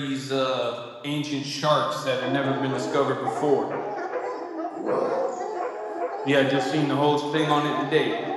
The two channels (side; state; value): both; identical; correlation 1.00